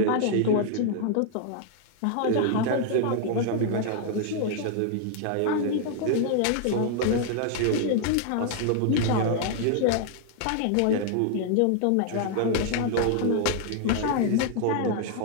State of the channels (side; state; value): both; different; correlation 0.00